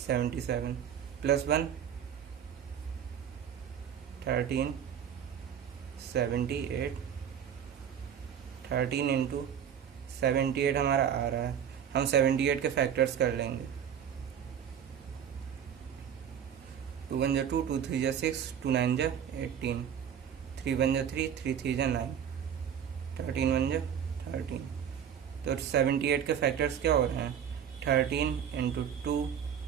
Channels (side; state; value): left; quieter; 8.6 dB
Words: 77 plus 1 13 78। 13 into 78 हमारा आ रहा है, हम 78 के फैक्टर्स कर लेंगे। 2 1 2, 2 3 6, 2 9 18, 3 1 3, 3 3 9, 13 1 13। तो 78 के फैक्टर्स क्या हो रहे हैं? 13 into 2